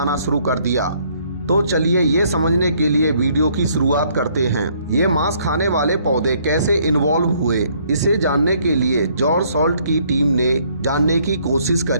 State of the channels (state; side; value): inverted; both; correlation -0.65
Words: शुरू कर दिया। तो चलिए ये समझने के लिए वीडियो की शुरुआत करते हैं। ये मांस खाने वाले पौधे कैसे इन्वॉल्व हुए, इसे जानने के लिए जॉर्ज सॉल्ट की टीम ने जानने की कोशिश